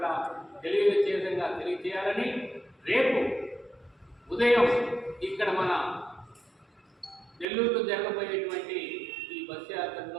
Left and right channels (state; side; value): drops out; left; at 7.5 s